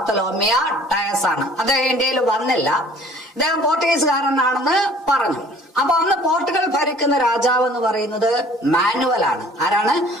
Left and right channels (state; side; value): normal; both; correlation 0.52